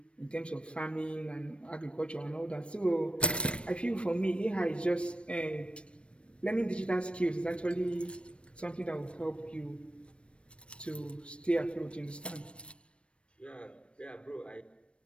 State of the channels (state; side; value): late; right; 0.059 ms